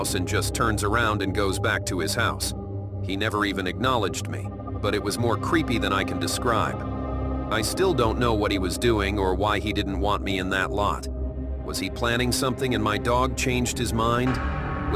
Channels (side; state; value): both; identical; correlation 1.00